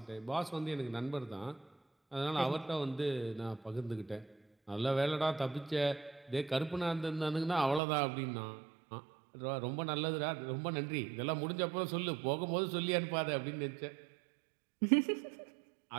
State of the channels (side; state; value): left; drops out; at 7.8 s